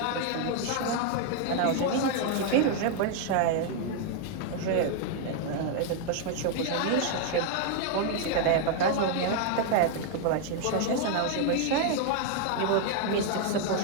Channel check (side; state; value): both; different; correlation 0.00